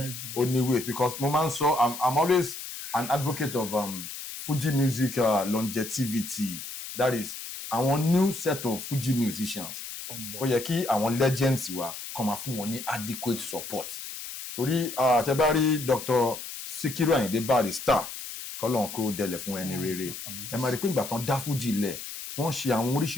oníwèé because mo máa ń sọ I'm always an advocate of Fuji music longevity, that is àwọn new set of Fuji musicians ó yẹ kí àwọn legends wa kàn máa fún wọn ní adequate support torí tẹ́ bá rí Dr. Sikiru Ayinde Barrister kọ́lọ́n kó dẹlẹ̀ fún ẹni rere ẹ máa rí pé ìgbà tán dá Fuji lẹ̀ wọ́n ṣe àwọn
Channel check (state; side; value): noise; left; hiss, 9 dB below the sound